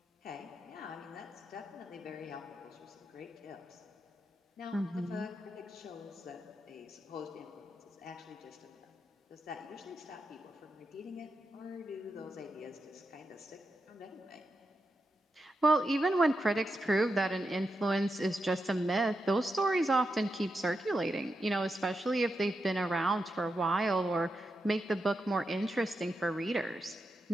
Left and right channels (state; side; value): normal; both; correlation 0.87